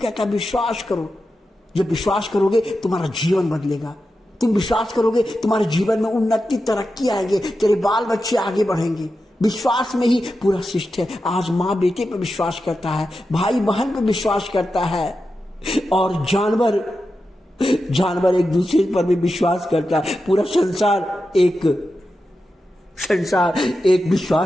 है विश्वास करो। जब विश्वास करोगे तुम्हारा जीवन बदलेगा। तुम विश्वास करोगे तुम्हारे जीवन में उन्नति, तरक्की आएगी, तेरे बाल बच्चे आगे बढ़ेंगे। विश्वास में ही पूरा शिष्ट है। आज माँ बेटे पर विश्वास करता है, भाई बहन पर विश्वास करता है, और जानवर एक दूसरे पर भी विश्वास करता है। पूरा संसार एक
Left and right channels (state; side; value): normal; both; correlation 0.90